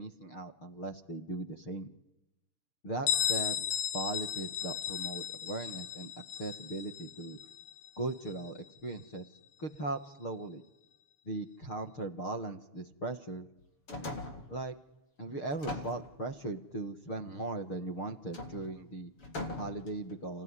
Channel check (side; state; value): right; late; 7.1 ms